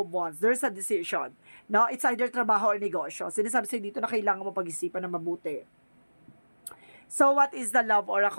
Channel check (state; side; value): inverted; both; correlation -1.00